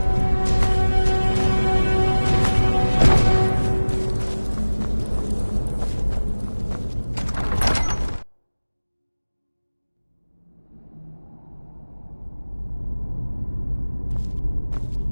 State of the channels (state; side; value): inverted; both; correlation -1.00